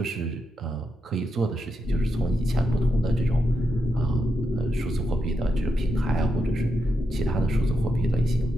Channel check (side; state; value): both; normal; correlation 0.85